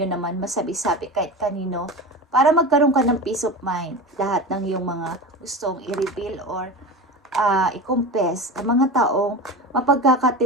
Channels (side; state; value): both; normal; correlation 0.28